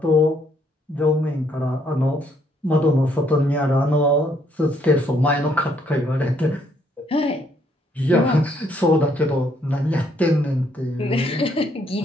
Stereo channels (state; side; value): normal; both; correlation 0.69